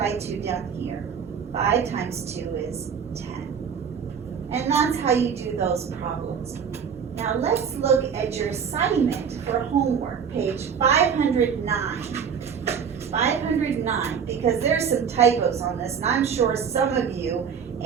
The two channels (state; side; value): quieter; left; 7.0 dB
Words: 2 down here. 5 times 2 is 10. And that's how you do those problems. Now let's look at your assignment for homework, page 509. 509, because there's some typos on this, and I'm sure some of you